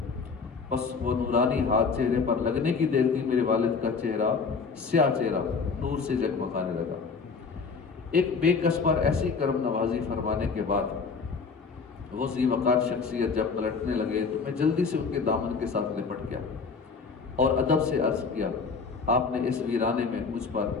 بس وہ نورانی ہاتھ چہرے پر لگنے کی دیر تھی میرے والد کا چہرہ، سیاہ چہرہ نور سے جگمگانے لگا۔ ایک بے کس پر ایسی کرم نوازی فرمانے کے بعد وہ ذی وقار شخصیت جب پلٹنے لگے تو میں جلدی سے ان کے دامن کے ساتھ لپٹ گیا اور ادب سے عرض کیا، آپ نے اس ویرانے میں مجھ پر،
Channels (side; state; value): right; quieter; 5.0 dB